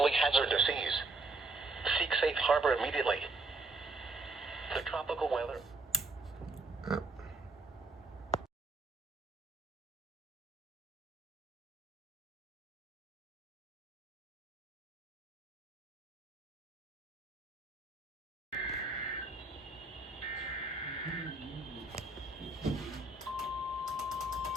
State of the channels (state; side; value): quieter; left; 3.2 dB